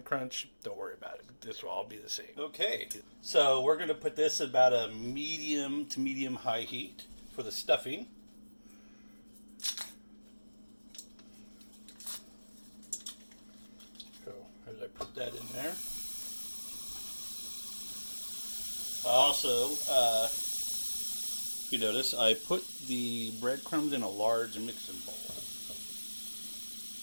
crunch, don't worry about it. This will all be the same. Okay, so we're going to put this at about a medium to medium high heat for the stuffing. So as I put that in there, also, you notice I put the breadcrumbs in a large mixing bowl.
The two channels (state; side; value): inverted; both; correlation -1.00